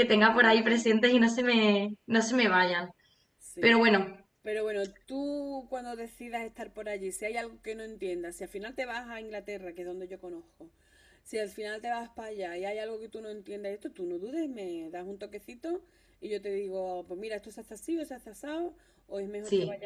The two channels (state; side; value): identical; both; correlation 1.00